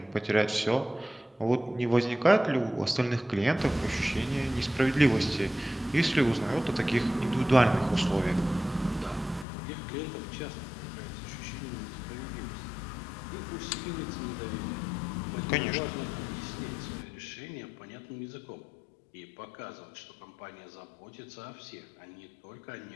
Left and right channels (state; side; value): drops out; right; at 9.5 s